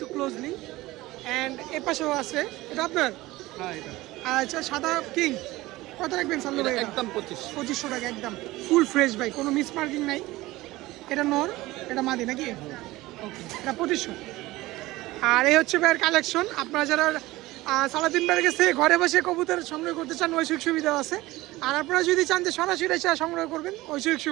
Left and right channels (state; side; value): quieter; left; 18.7 dB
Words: ক্লোজলি। অ্যান্ড এ পাশেও আছে, এটা আপনার? হ্যাঁ, এটা আচ্ছা, সাদা কিং কত রাখবেন সাল্লু ভাই? একদম 2500 টাকা, একদম ফুল ফ্রেশ ভাই, কোনো মিস মার্কিং নাই। এটা নর, এটা মাদি নাকি? ওকে, এটা 2500। আর এই হচ্ছে ভাইয়ের কালেকশন। আপনারা যারা সালাদিন ভাইয়ের কাছে ঘরে বসে কবুতর সংগ্রহ করতে চান, ওই সুযোগ সুবিধা আছে। আর আপনারা যদি চান যে সরাসরি এসে সংগ্রহ করবেন, ওই সুযোগ